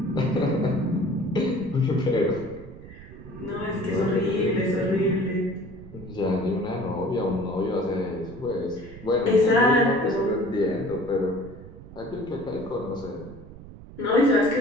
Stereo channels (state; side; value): noise; right; rumble, 17 dB below the sound